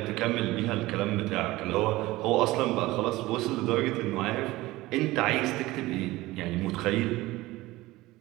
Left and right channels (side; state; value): left; quieter; 18.7 dB